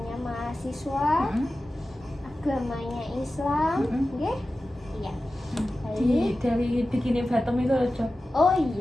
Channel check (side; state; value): both; normal; correlation 0.94